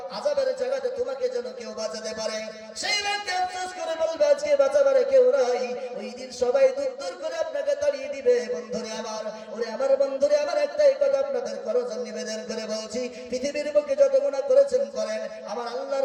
আযাবের জায়গাতে তোমাকে যেন কেউ বাঁচাতে পারে। সেই ব্যক্তি আফসোস করে বলবে আজকে বাঁচাবার কেউ নাই। ওই দিন সবাই দূর দূর করে আপনাকে তাড়িয়ে দিবে। বন্ধুরে আমার, ওরে আমার বন্ধুরে আমার, একটাই কথা আপনাদের করজন নিবেদন করে বলছি, পৃথিবীর বুকে যত গুনাহ করেছেন করেন, আমার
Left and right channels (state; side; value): identical; both; correlation 1.00